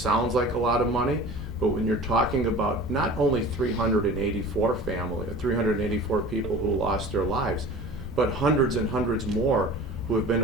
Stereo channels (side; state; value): right; noise; rumble, 23 dB below the sound